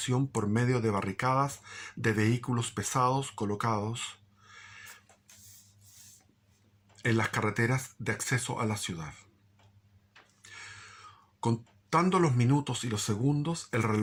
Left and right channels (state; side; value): identical; both; correlation 1.00